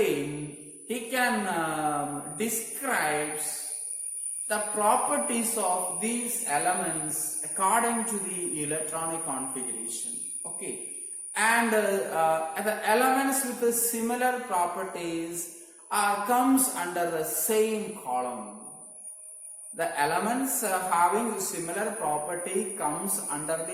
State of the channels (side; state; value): both; identical; correlation 1.00